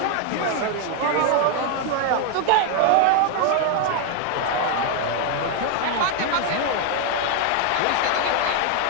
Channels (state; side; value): different; both; correlation 0.01